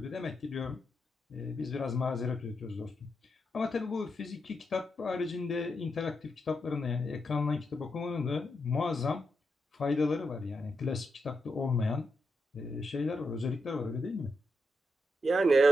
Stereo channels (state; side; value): normal; both; correlation 0.84